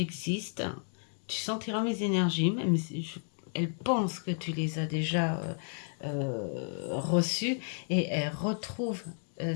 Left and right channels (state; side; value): silent; right; 56 dB below the other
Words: Tu sentiras mes énergies, même si elle pense que tu les as déjà reçues, et elle retrouve